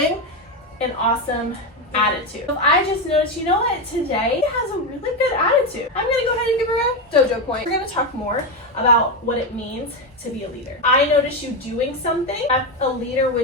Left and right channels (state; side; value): normal; both; correlation 0.11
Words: an awesome attitude. If I just noticed, you know what, today has a really good attitude, I'm gonna go ahead and give her a dojo point. We're gonna talk more about what it means to be a leader. I notice you doing something that a leader